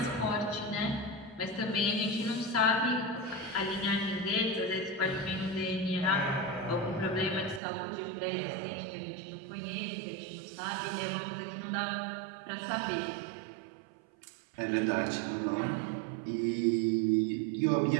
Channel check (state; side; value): drops out; left; at 7.6 s